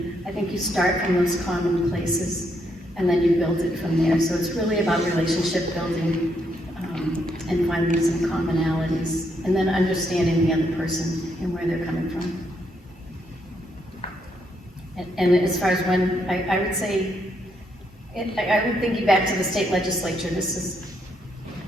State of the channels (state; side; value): normal; both; correlation 0.76